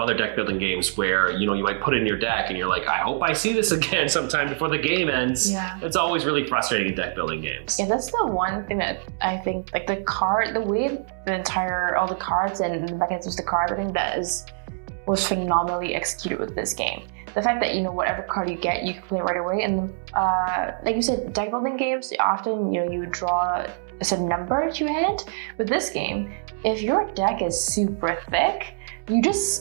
other deck building games where, you know, you might put it in your deck and you're like, I hope I see this again sometime before the game ends. Yeah. It's always really frustrating in deck building games. Yeah, that's the one thing that I think, like the way all the cards and the mechanisms of the cards, I think was phenomenally executed with this game. The fact that, you know, whatever card you get, you can play right away. And like you said, deck building games, often, you know, you draw a certain number to your hand. With this game, if your deck is super thick, you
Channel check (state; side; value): silent; left; 62 dB below the other